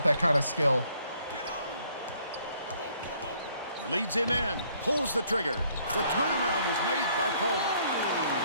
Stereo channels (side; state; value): both; inverted; correlation -0.64